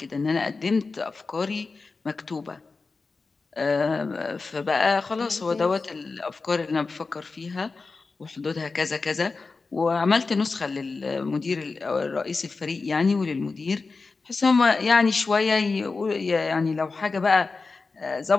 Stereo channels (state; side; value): quieter; right; 4.1 dB